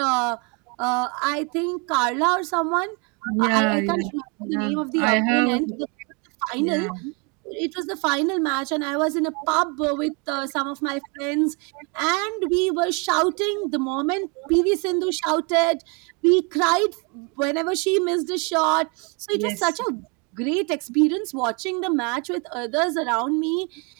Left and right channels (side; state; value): left; quieter; 32.9 dB